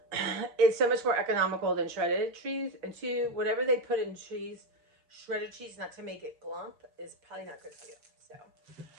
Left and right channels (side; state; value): left; late; 6.1 ms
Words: it's so much more economical than shredded cheese, and 2, whatever they put in cheese, shredded cheese, not to make it glump, is probably not good for you. So.